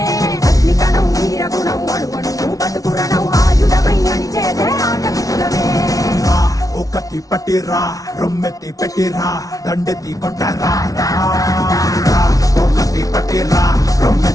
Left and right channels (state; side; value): late; right; 0.18 ms